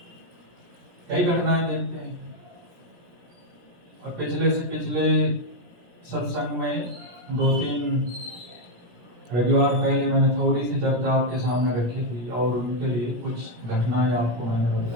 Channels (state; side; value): late; left; 17 ms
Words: कई घटनाएं देखते हैं और पिछले से पिछले सत्संग में 2-3 रविवार पहले मैंने थोड़ी सी चर्चा आपके सामने रखी थी और उनके लिए कुछ घटनाएं आपको मैंने